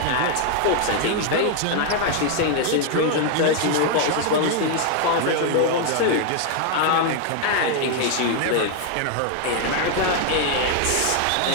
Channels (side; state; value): both; different; correlation 0.00